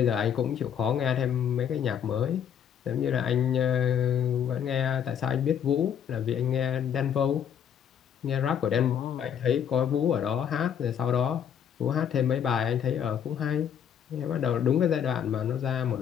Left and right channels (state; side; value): quieter; right; 8.6 dB